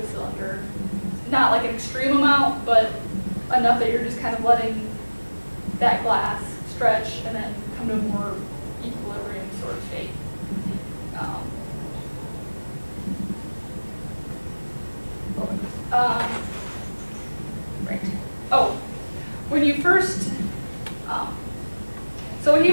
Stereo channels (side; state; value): both; inverted; correlation -1.00